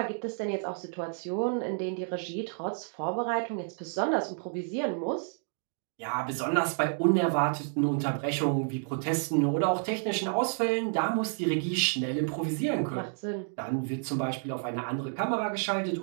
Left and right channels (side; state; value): left; silent; 58 dB below the other